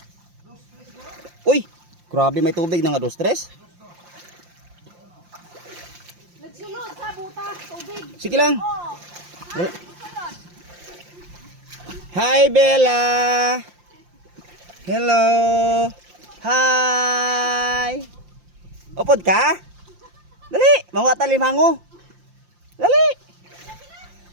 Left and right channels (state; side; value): late; left; 5.7 ms